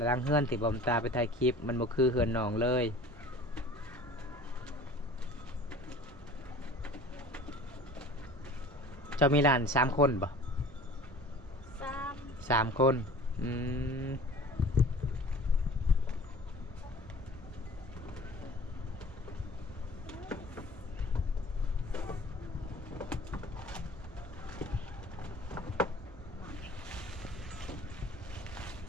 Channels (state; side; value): normal; both; correlation 0.44